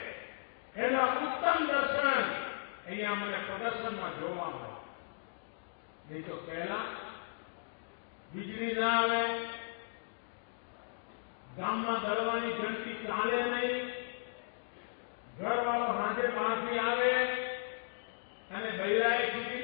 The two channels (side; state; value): right; silent; digital silence